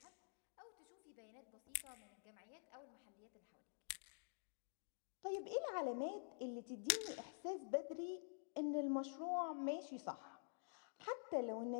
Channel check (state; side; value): silent; right; digital silence